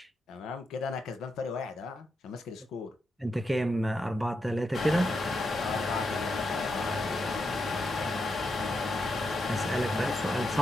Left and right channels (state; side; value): normal; both; correlation 0.84